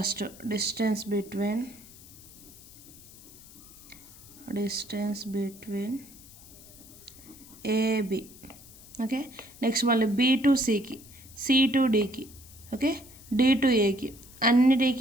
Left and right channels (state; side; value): noise; left; hiss, 20 dB below the sound